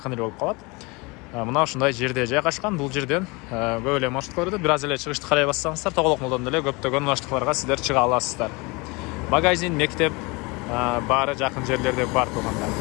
эле болуп калат. Мына ушундай жерде жайгашкан. Бул жерден көп эле маршруткаларды бир аз эле чыгышты карай бассаңыздар Тоголок молдон деле көптөгөн маршруткаларга сиздер чыга аласыздар. Магазин, мектеп баары жакын жерлерде бар туғандар.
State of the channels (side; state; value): right; quieter; 26.7 dB